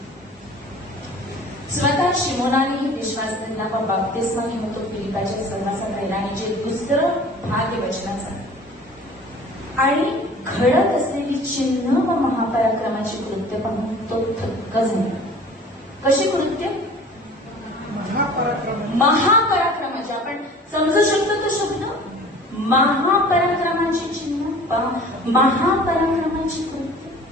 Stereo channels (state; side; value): normal; both; correlation 0.45